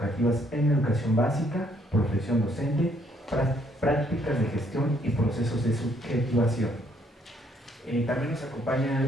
en educación básica, profesión docente, prácticas de gestión y procesos de subjetivación. También nos acompaña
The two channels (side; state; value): both; normal; correlation 0.68